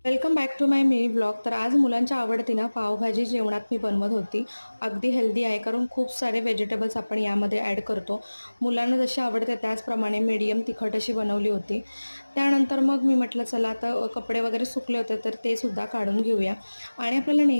Welcome back to my mini blog. तर आज मुलांच्या आवडतीनं पावभाजी जेवणात मी बनवत होती. अगदी हेल्दी आहे, कारण खूप सारे व्हेजिटेबल्स आपण यामध्ये ॲड करतो. मुलांना जशी आवडते त्याचप्रमाणे मीडियम तिखट अशी बनवली होती. त्यानंतर मग मी म्हटलं चला आता कपडे वगैरे सुकले होते तर ते सुद्धा काढून घेऊया. आणि आपल्याला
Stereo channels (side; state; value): both; inverted; correlation -1.00